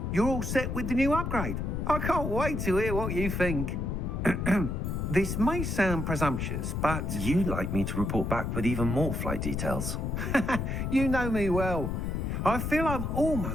you're all set with the new upgrade. I can't wait to hear what you think. This may sound presumptuous, but... You'd like me to report back with even more flight details. You know me well. I feel I'm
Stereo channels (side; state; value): left; noise; rumble, 2 dB below the sound